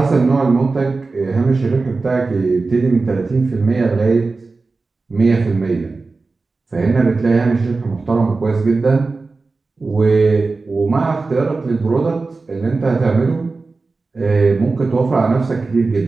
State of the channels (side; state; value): left; quieter; 3.8 dB